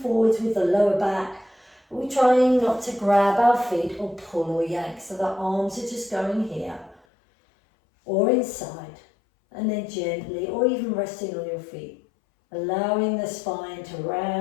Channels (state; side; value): drops out; right; at 7.0 s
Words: with the lower back. We're trying not to grab our feet or pull or yank. So the arms are just going here or inside, and then gently, or even resting on your feet, allowing the spine to